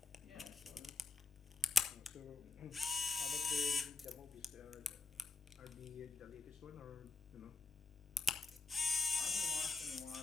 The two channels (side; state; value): right; quieter; 3.9 dB